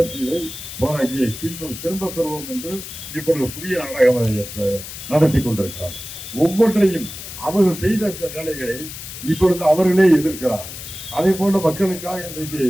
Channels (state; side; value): noise; left; hiss, 11 dB below the sound